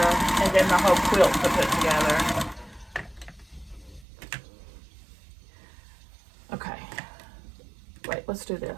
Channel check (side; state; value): left; drops out; at 4.0 s